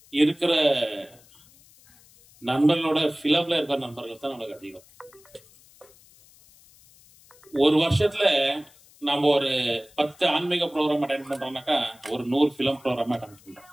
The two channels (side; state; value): left; noise; hiss, 27 dB below the sound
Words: இருக்கிற நண்பர்களோட பிலிம்ல இருக்கிற நண்பர்கள் தான் நம்மளுக்கு அதிகம். ஒரு வருஷத்துல நம்ம ஒரு 10 ஆன்மீக ப்ரோக்ராம் அட்டெண்ட் பண்றோம்னாக்கா ஒரு 100 பிலிம் ப்ரோக்ராம் அட்டெண்ட் பண்றோம்.